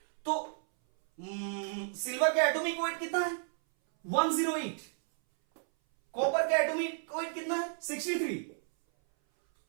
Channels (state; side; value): silent; left; 56 dB below the other